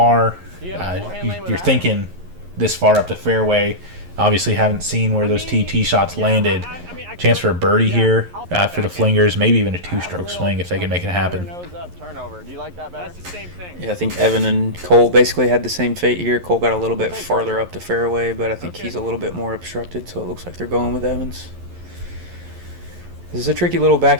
You're thinking this far up the fairway. Obviously haven't seen where those tee shots landed. Chance for a birdie here for the Flingers. Maybe even a two-stroke swing if they can make it happen. Nose up, turnover. Do you like that better? that's the same thing. Yeah, I think Evan and Cole basically had the same fate here. Cole got a little bit farther up the fairway, but I think he's a little bit more obstructed, so it looks like they're going with Evans. This is a tricky little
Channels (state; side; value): late; left; 11 ms